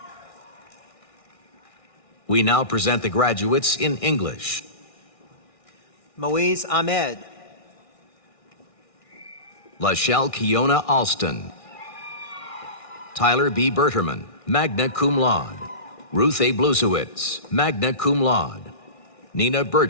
We now present the graduates in English. Moise Ahmed. Lachelle Kiona Alston. Tyler B. Berterman, magna cum laude. Ruth A. Blusewitz, magna cum laude. Nina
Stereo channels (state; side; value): late; right; 1.6 ms